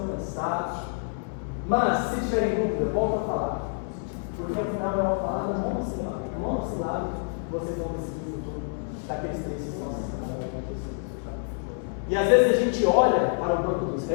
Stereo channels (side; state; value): right; silent; 59 dB below the other